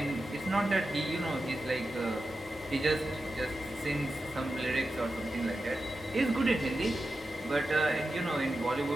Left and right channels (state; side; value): normal; both; correlation 0.91